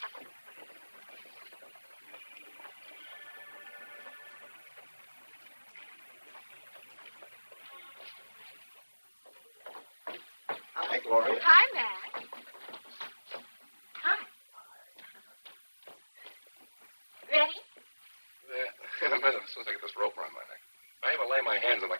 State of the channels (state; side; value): inverted; both; correlation -1.00